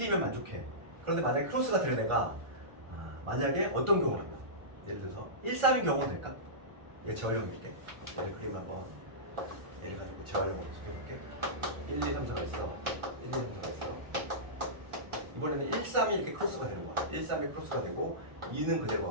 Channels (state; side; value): late; left; 1.4 ms